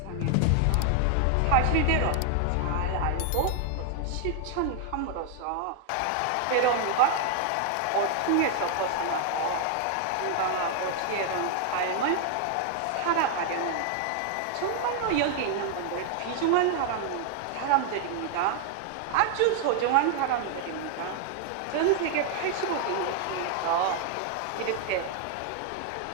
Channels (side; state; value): both; different; correlation 0.00